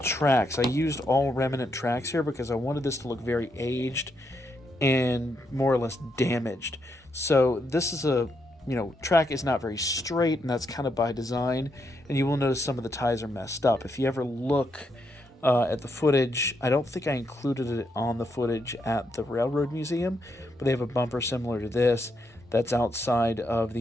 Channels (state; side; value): normal; both; correlation 0.79